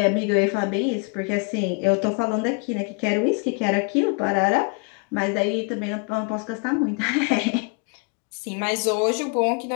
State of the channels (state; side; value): quieter; right; 35.0 dB